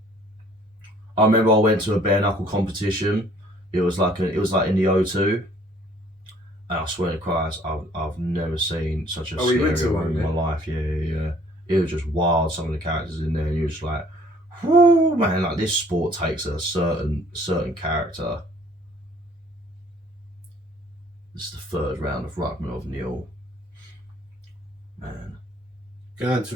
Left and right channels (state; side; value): normal; both; correlation 0.58